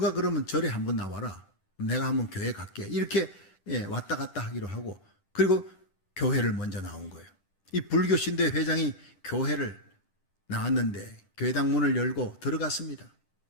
그러면 절에 한 번 나와라. 내가 한번 교회 갈게. 이렇게 왔다 갔다 하기로 하고, 그리고 교회를 먼저 나온 거예요. 이 불교 신도회 회장이 교회를 나왔는데 교회당 문을 열고 들어갔습니다.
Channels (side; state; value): right; late; 10 ms